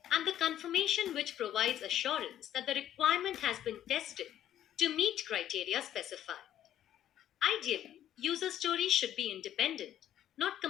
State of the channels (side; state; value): right; quieter; 11.4 dB